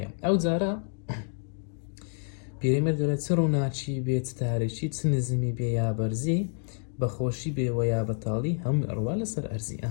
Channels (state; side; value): silent; right; digital silence